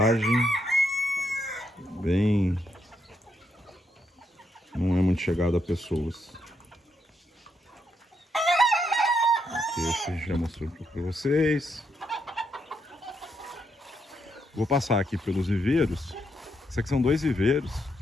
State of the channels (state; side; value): normal; both; correlation 0.78